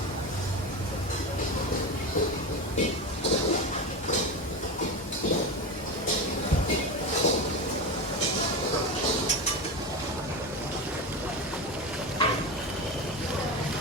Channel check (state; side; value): normal; both; correlation 0.21